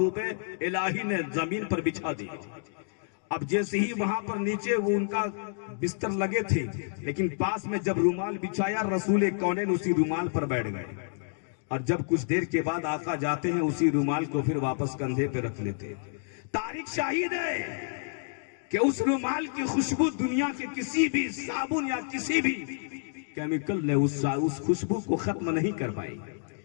الہی نے زمین پر بچھا دیا۔ اب جیسے ہی وہاں پر نیچے وہ ان کا بستر لگے تھے، لیکن پاس میں جب رومال بچھایا، رسول کونین اسی رومال پر بیٹھ گئے، اور جب کچھ دیر کے بعد آقا جاتے ہیں اسی رومال کو پھر واپس کندھے پہ رکھ لیتے۔ تاریخ شاہد ہے کہ اس رومال کی خوشبو دنیا کے کسی بھی صابن یا کسی بھی کیمیکل نے اس خوشبو کو ختم نہیں کر پائی،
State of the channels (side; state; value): right; silent; digital silence